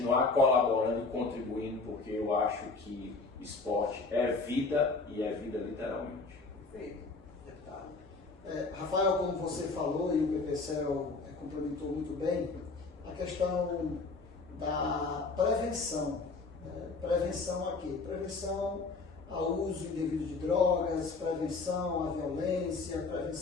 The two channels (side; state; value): right; quieter; 4.0 dB